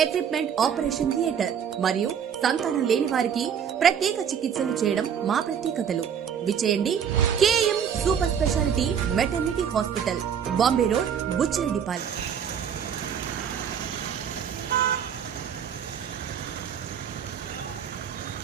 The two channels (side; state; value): left; quieter; 8.0 dB